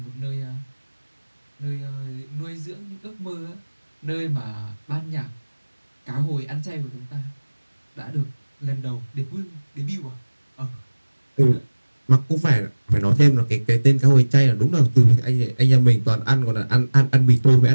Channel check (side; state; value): both; inverted; correlation -1.00